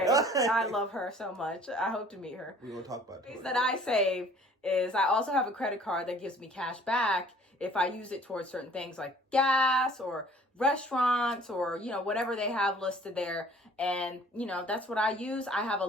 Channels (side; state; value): both; normal; correlation 0.52